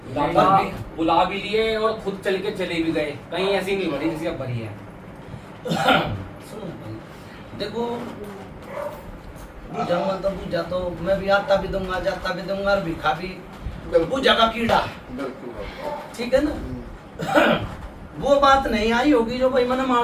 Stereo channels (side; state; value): both; identical; correlation 1.00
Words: दादा बुला भी लिए और खुद चल के चले भी गए, कहीं ऐसी नहीं भरी जैसी अब भरी है। सुनो भाई, देखो पूजा तो पूजा तो मैं भी आता भी दूंगा, जाता भी दूंगा और भिखा भी। पूजा का कीड़ा है, बिल्कुल बाबा। ठीक है ना। वो बात नहीं आई होगी जो भाई मैंने